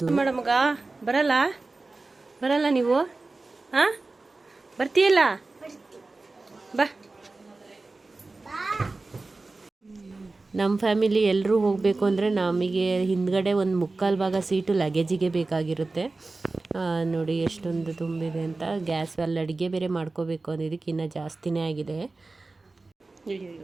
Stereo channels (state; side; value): quieter; left; 3.4 dB